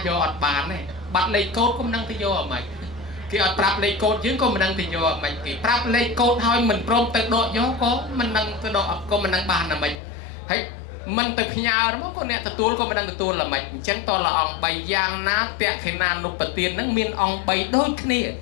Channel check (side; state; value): right; drops out; at 10.0 s